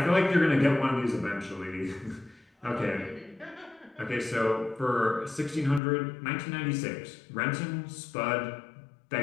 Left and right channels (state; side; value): drops out; right; at 5.8 s